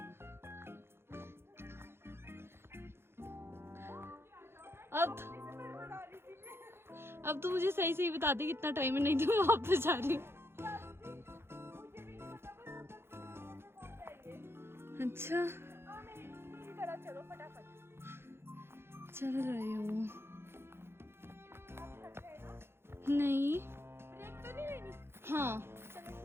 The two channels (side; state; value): left; late; 0.12 ms